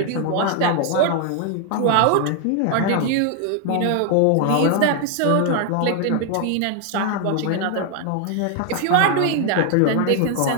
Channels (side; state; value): both; different; correlation 0.00